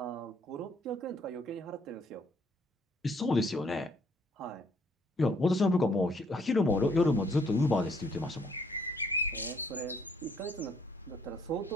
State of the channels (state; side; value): normal; both; correlation 0.65